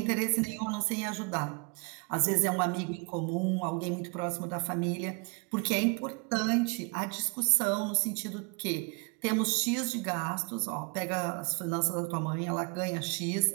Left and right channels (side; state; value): left; quieter; 32.3 dB